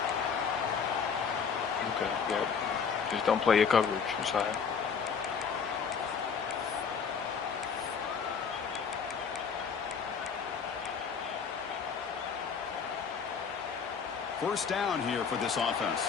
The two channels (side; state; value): right; quieter; 6.3 dB